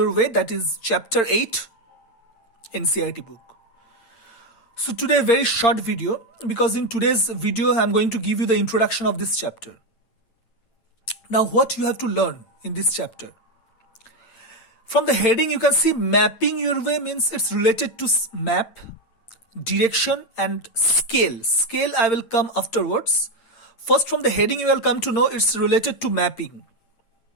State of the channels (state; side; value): late; right; 8.8 ms